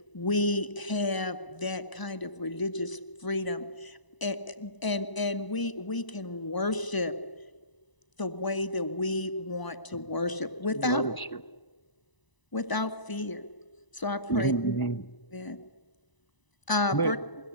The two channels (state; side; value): late; right; 1.0 ms